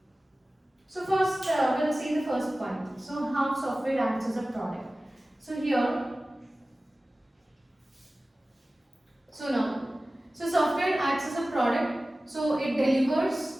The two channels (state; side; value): normal; both; correlation 0.97